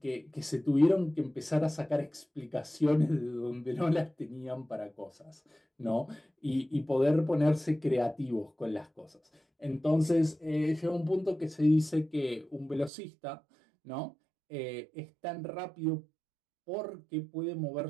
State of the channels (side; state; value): left; drops out; at 12.9 s